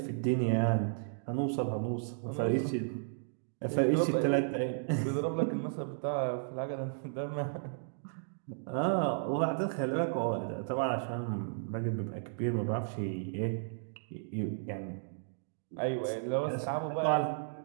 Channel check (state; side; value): silent; left; digital silence